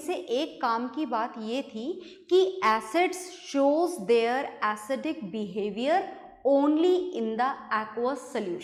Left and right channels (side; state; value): both; identical; correlation 1.00